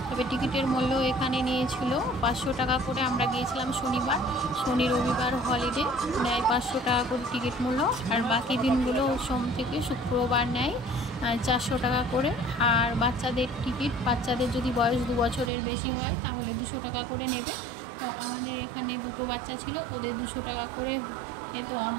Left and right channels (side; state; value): left; drops out; at 15.5 s